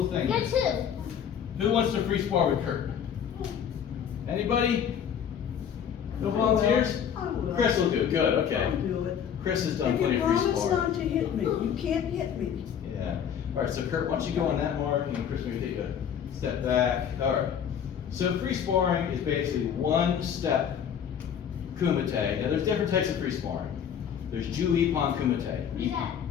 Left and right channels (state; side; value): quieter; right; 8.4 dB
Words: thing. Get two. Who wants to free spar with Kurt? Anybody? No volunteers? I will. Chris will do it. Good, okay. I'll do it. Chris has done If plenty you of free promise sparring. not to hit me, you can't hit me. Yeah. All right, so Kurt, why don't you go on that mark and Chris maybe take a step back. All right. So free sparring is basically one step kumite. Now there's different types of free sparring. There's Ju-Ippon kumite. What is that?